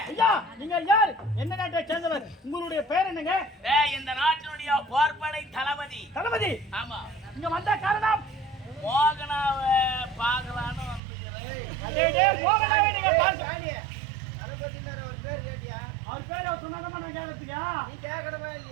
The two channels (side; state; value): left; drops out; at 11.0 s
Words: ஐயா நீங்க யார்? என்ன நாட்டை சேர்ந்தவர்? உங்களுடைய பேர் என்னங்க? இந்த நாட்டினுடைய போர்படை தளபதி. தளபதி? ஆமா. இங்க வந்த காரணம் மோகனாவை பார்க்கலான்னு வந்துக்கிறேன். மோகனாவை நீங்க பாருங்க. தளபதினார் அவர் பேர் கேட்டியா? அவர் பேர் அவர் சொன்னாங்க நான் கேட்கறதுயா? நீ கேட்கணுமா